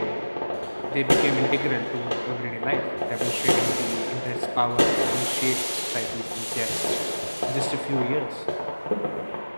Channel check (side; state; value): both; inverted; correlation -1.00